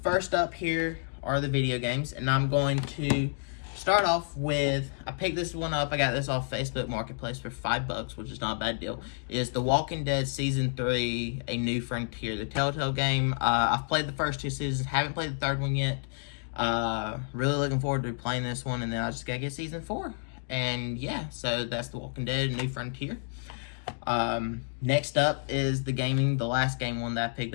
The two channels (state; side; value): silent; right; digital silence